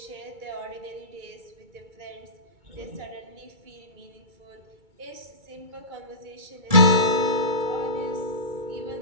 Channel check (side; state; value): left; late; 2.3 ms